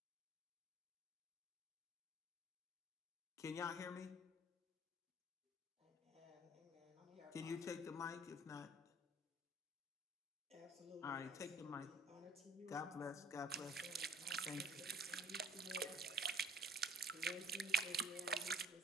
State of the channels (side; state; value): both; normal; correlation 0.51